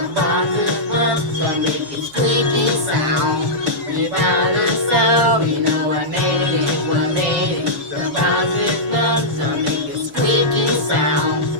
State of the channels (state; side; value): late; left; 7.6 ms